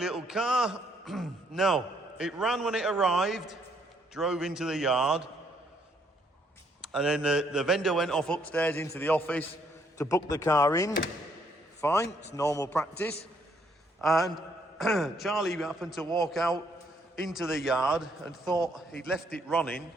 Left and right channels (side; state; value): both; normal; correlation 0.70